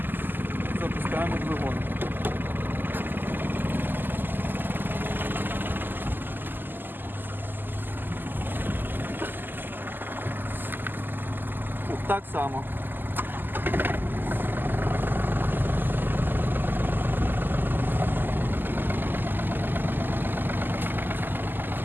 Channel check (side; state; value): left; late; 0.091 ms